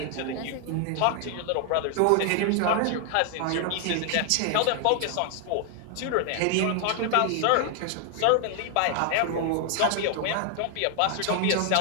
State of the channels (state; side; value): different; both; correlation 0.00